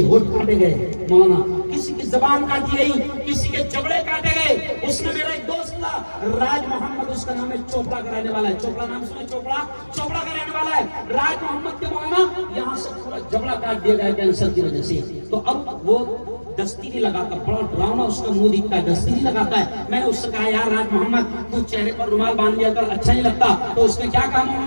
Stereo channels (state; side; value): inverted; both; correlation -1.00